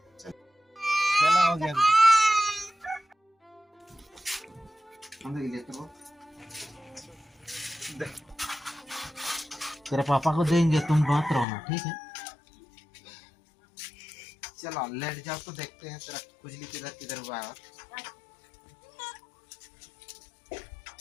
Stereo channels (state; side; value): drops out; right; at 11.5 s